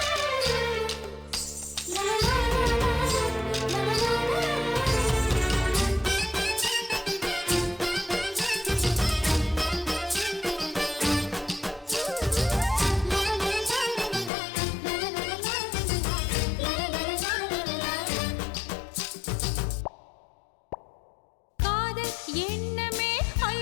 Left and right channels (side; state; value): right; drops out; at 14.3 s